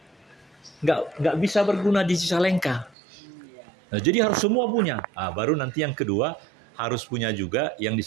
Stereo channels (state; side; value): drops out; left; at 3.0 s